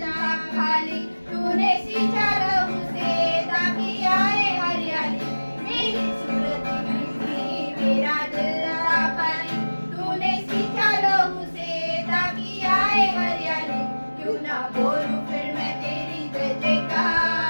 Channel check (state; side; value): inverted; both; correlation -1.00